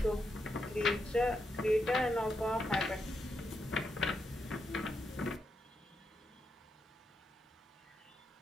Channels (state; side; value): normal; both; correlation 0.83